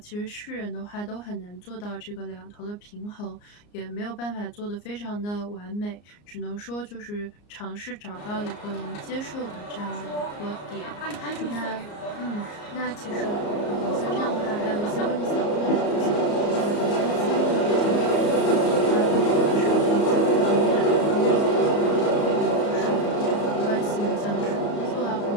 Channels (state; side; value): late; right; 34 ms